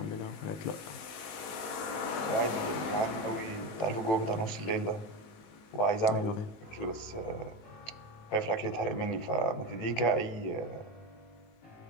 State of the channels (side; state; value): right; late; 18 ms